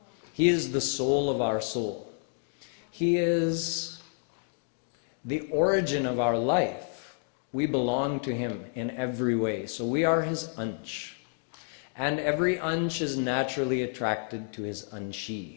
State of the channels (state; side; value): silent; right; 58 dB below the other